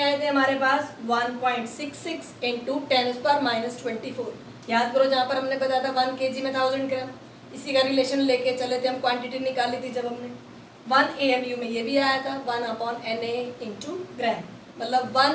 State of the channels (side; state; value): both; identical; correlation 1.00